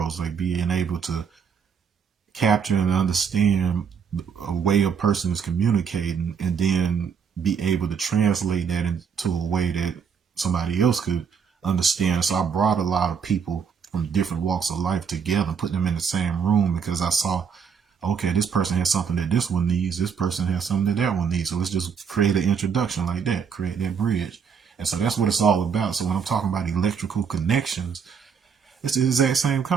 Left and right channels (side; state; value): left; quieter; 6.7 dB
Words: like being able to capture and understand a way a person is communicating, and then be able to translate that into a way that somebody else could understand. So I brought a lot of people from different walks of life together, put them in the same room, because I saw, okay, this person has something that this one needs, this person has something that that one needs. So let's just create an introduction like that, create that bridge. And so that's what it's all about. So when I'm talking about electrical connections, it's the exact same